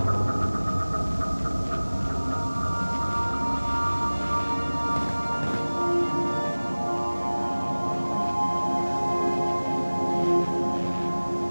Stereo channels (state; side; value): inverted; both; correlation -1.00